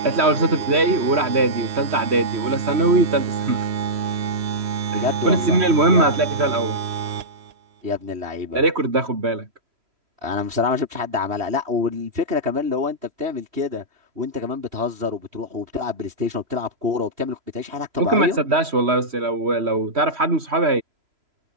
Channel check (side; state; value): left; late; 3.1 ms